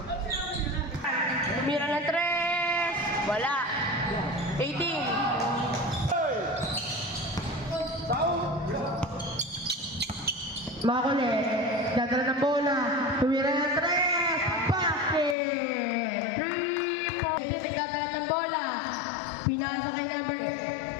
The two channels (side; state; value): right; drops out; at 15.4 s